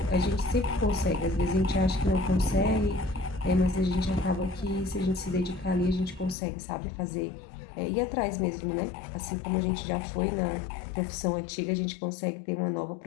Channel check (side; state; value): right; drops out; at 6.4 s